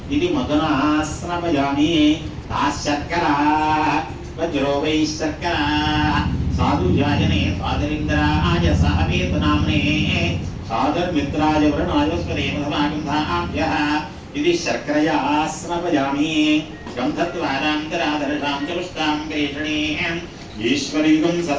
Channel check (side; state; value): both; identical; correlation 1.00